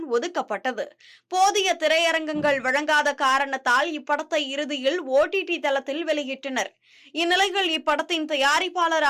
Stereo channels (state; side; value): identical; both; correlation 1.00